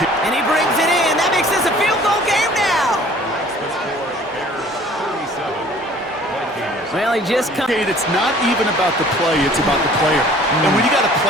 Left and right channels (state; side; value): normal; both; correlation 0.52